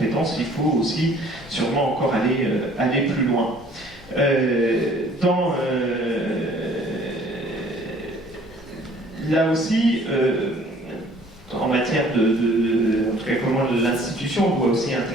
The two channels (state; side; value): normal; both; correlation 0.55